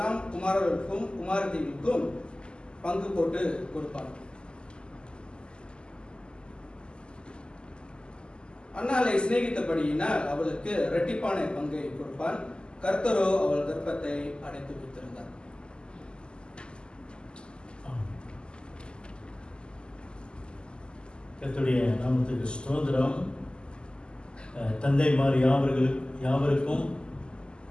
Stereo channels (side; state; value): right; late; 0.049 ms